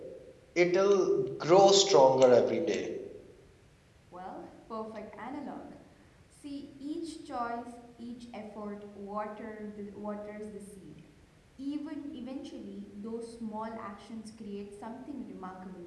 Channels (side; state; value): both; identical; correlation 1.00